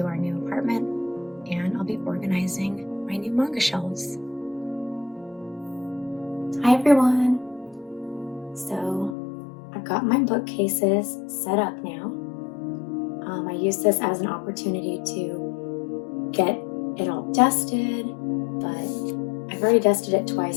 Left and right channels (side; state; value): right; drops out; at 9.2 s